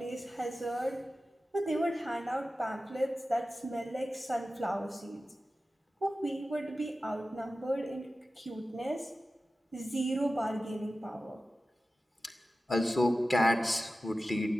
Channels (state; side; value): normal; both; correlation 0.94